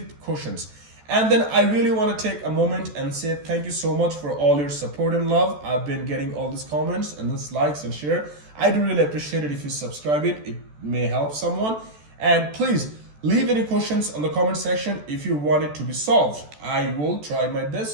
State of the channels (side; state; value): left; late; 14 ms